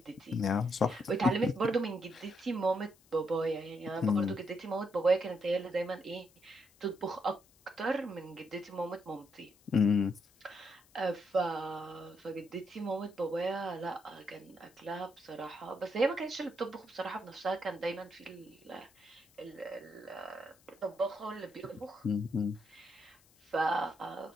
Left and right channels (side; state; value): left; noise; hiss, 29 dB below the sound